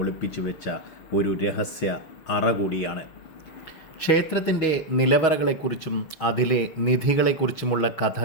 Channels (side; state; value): right; late; 6.3 ms